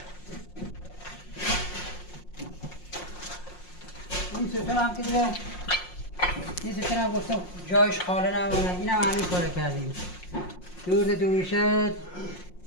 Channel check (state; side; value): late; right; 5.6 ms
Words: این ستون هم که دیگه این ستون هم گفتم جایش خاله نمونه. این هم همین کاره کردیم. دور تا دورشه